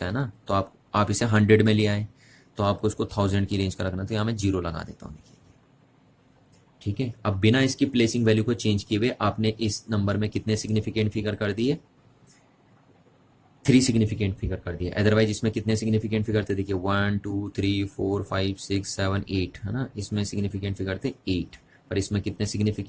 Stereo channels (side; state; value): both; identical; correlation 1.00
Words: है ना, तो आप इसे 100 में ले आए, तो आपको इसको 1000 की रेंज का रखना, तो यहाँ मैं 0 लगा देता हूँ, देखिए। ठीक है, अब बिना इसकी प्लेसिंग वैल्यू को चेंज किए हुए आपने इस नंबर में कितने सिग्निफिकेंट फिगर कर दिए, 3 सिग्निफिकेंट फिगर कर दिए। अदरवाइज इसमें कितने सिग्निफिकेंट फिगर थे, देखिए 1 2 3 4 5 6 7 8, है ना, इसमें सिग्निफिकेंट फिगर थे 8, पर इसमें कितने